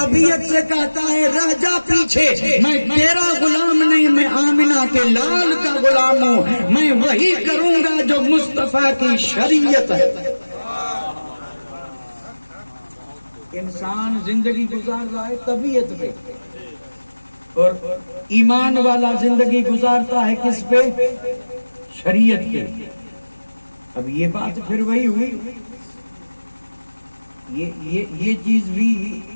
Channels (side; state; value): both; inverted; correlation -1.00